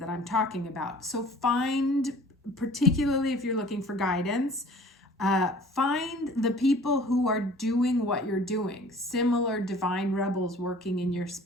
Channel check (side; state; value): both; normal; correlation 0.48